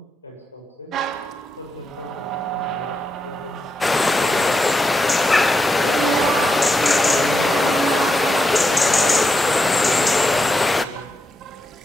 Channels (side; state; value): both; normal; correlation 0.85